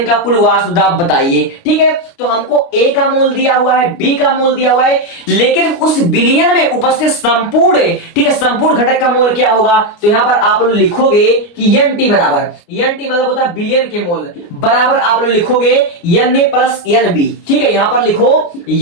का कुल वाष्पदाब बताइए, ठीक है। तो हमको ए का मोल दिया हुआ है, बी का मोल दिया हुआ है, लेकिन उस विलयन में उपस्थित संपूर्ण, ठीक है, संपूर्ण घटक का मोल क्या होगा, तो यहां पर आप लोग लिखोगे कि एन टी बराबर, एन टी मतलब होता है विलयन के मोल, बराबर आप लोग लिखोगे N A plus N B, ठीक है। यहां पर लिखो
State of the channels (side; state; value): right; late; 29 ms